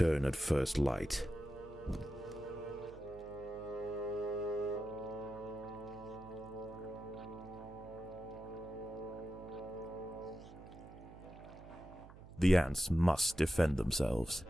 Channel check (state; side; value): noise; right; hum, 18 dB below the sound